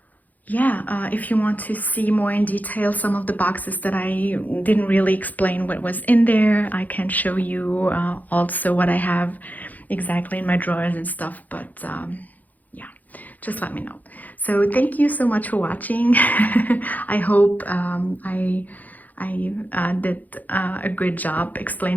if you want to see more in detail some of the boxes that I didn't really explain what was in there, I can show you also what I have exactly in my drawers and stuff. But just let me know. So thank you so much for watching. I hope I did a good job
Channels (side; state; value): right; late; 0.081 ms